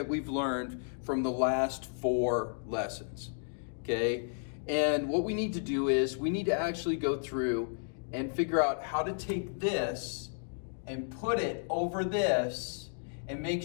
we've learned from the last 4 lessons, okay? And what we need to do is we need to actually go through and figure out how to take this and put it over this and make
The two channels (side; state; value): right; silent; digital silence